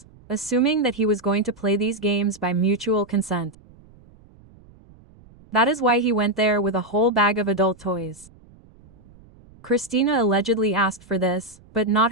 assuming that he was going to play these games by mutual consent. That is why he went there with a whole bag of adult toys. Christina allegedly asked for this, but not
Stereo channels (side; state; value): right; noise; rumble, 26 dB below the sound